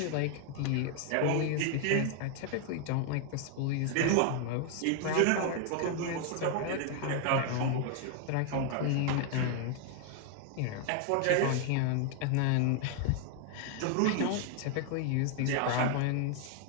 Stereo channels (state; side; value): different; both; correlation 0.00